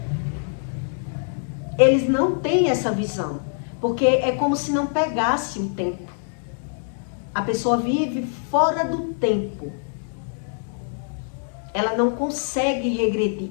Eles não têm essa visão. Porque é como se não pegasse o tempo. A pessoa vive fora do tempo. Ela não consegue regredir.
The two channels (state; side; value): silent; right; digital silence